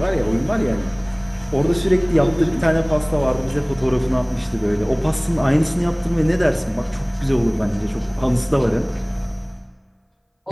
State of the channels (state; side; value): identical; both; correlation 1.00